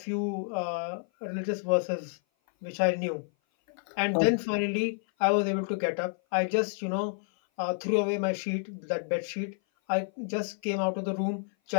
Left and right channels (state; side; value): silent; right; 56 dB below the other